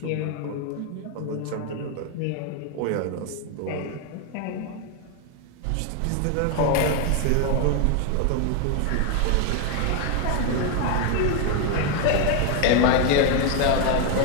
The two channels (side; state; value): both; different; correlation 0.01